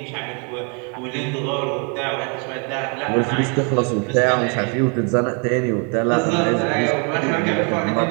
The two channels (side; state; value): left; quieter; 36.2 dB